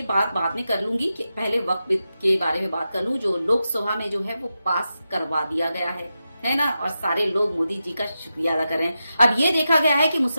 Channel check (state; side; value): inverted; both; correlation -0.90